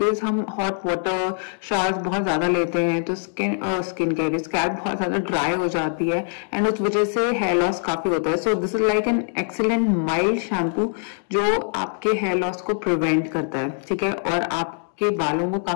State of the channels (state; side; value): silent; right; digital silence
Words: हम हॉट वाटर शावर्स बहुत ज्यादा लेते हैं, तो स्किन केयर स्कैल्प बहुत ज्यादा ड्राई हो जाती है एंड उस वजह से हेयर लॉस काफी होता है। सो this is like an excellent mild shampoo जो आपके हेयर लॉस को प्रिवेंट करता है, ठीक है, और आपके बालों को